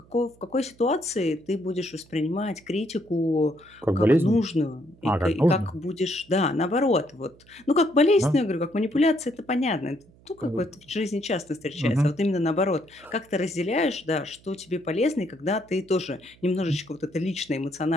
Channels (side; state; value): right; noise; hum, 27 dB below the sound